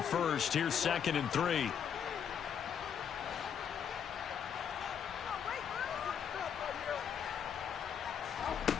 first. Here's 2nd and 3.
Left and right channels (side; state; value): right; quieter; 8.0 dB